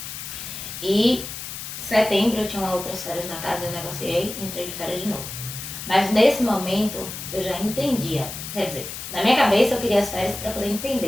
E setembro eu tinha outras férias na casa, eu negociei e entrei de férias de novo. Mas nesse momento eu já entendia, quer dizer, na minha cabeça eu queria as férias para poder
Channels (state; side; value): noise; left; hiss, 8 dB below the sound